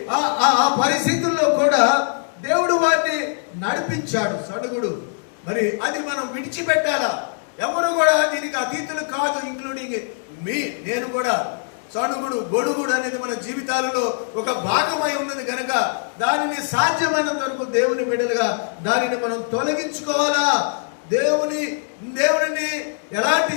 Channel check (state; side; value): silent; right; digital silence